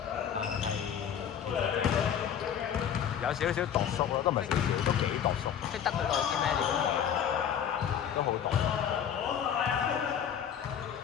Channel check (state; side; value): quieter; right; 8.8 dB